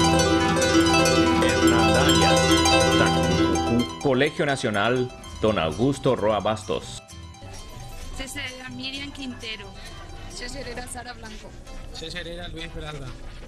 Colegio Nacional Don Augusto Roa Bastos. Cesarera Miriam Quintero. Cesarera Sara Blanco. Cesarera Luis Peralta.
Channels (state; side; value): identical; both; correlation 1.00